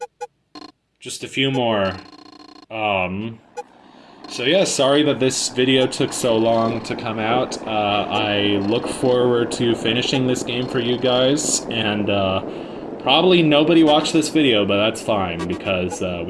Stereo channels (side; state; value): both; identical; correlation 1.00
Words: Just a few more. So yeah, sorry that this video took so long to come out. I look forward to finishing this game for you guys, and probably nobody watched this video, but that's fine, because